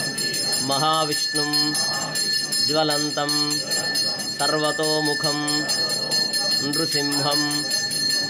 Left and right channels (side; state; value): both; identical; correlation 1.00